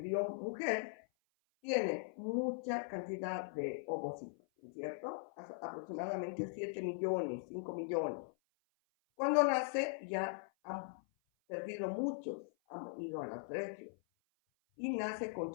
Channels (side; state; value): right; silent; 51 dB below the other